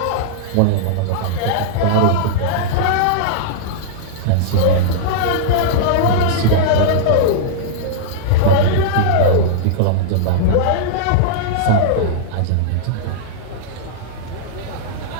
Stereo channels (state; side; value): different; both; correlation -0.02